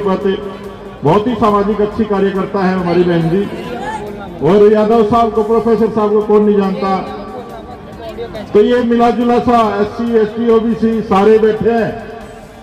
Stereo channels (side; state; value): both; identical; correlation 1.00